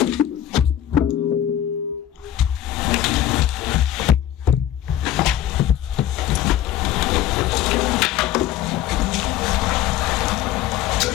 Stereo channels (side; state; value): right; quieter; 11.6 dB